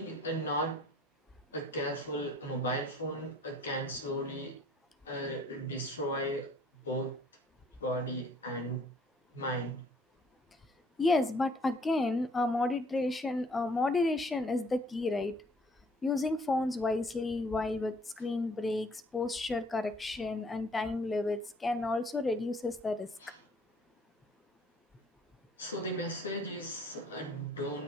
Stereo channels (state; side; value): normal; both; correlation 0.58